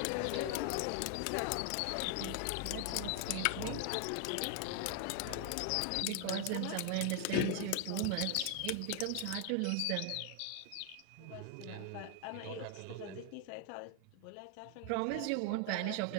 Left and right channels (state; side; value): different; both; correlation 0.00